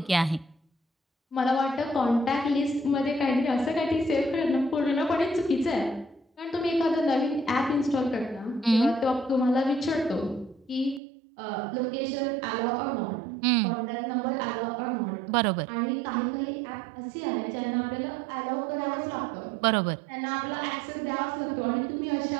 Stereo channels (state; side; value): drops out; left; at 11.0 s